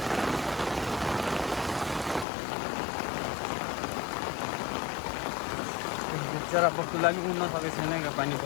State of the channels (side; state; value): right; drops out; at 2.2 s